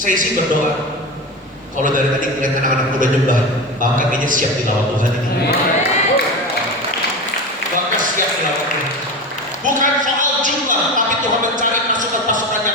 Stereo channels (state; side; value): normal; both; correlation 0.26